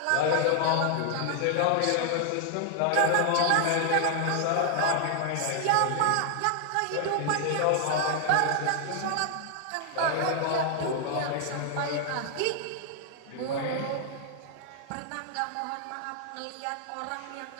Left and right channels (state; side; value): different; both; correlation 0.00